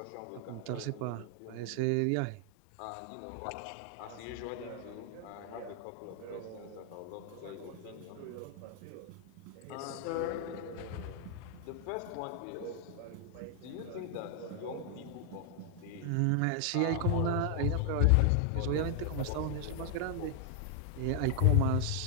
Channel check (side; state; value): both; different; correlation 0.00